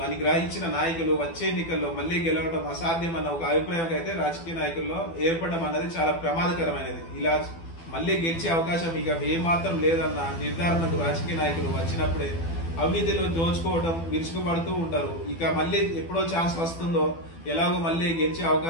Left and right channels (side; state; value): right; late; 12 ms